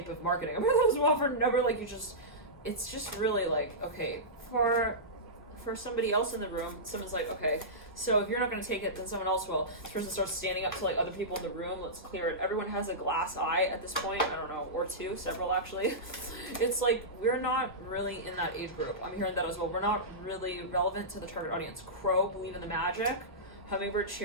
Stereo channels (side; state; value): both; normal; correlation -0.15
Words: of marketing. I mean, that was well for never, like, it's just really like, okay, for somebody else in the room, someone's like, okay, so if you're not going to take it, then someone else will. This person starts standing up to like other people in the room. Let's clear it. Everyone has a glass eye at this point. I don't know, or two, several actually. It's like, we're not really in that age group. I'm hearing that as well. We're not really relevant to the target audience. Crow, believe in the magic. Hummingbird,